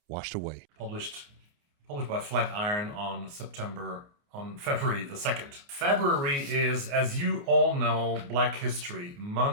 washed away. Published by Flatiron on September on February the 2nd. February is, as you all know, Black History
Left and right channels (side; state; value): left; late; 29 ms